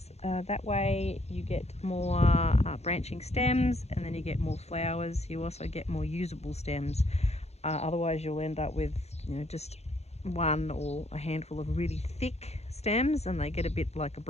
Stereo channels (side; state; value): right; late; 0.31 ms